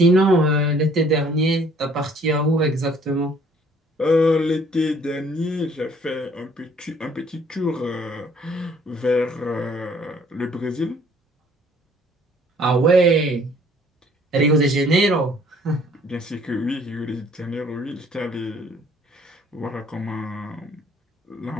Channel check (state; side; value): normal; both; correlation 0.58